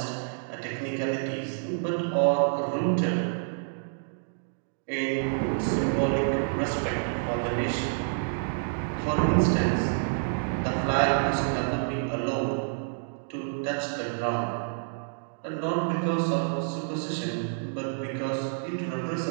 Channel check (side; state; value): left; silent; digital silence